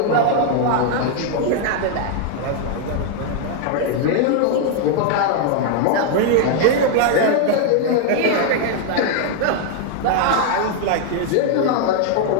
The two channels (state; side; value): different; both; correlation 0.00